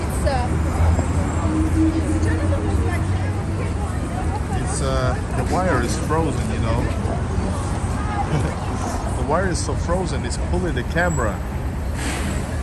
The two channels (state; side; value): identical; both; correlation 1.00